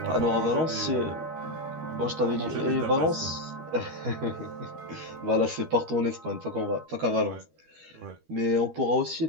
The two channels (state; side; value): late; left; 12 ms